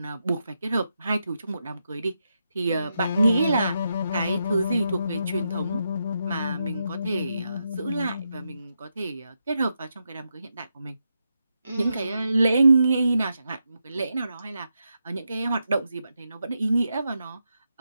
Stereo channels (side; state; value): both; inverted; correlation -0.85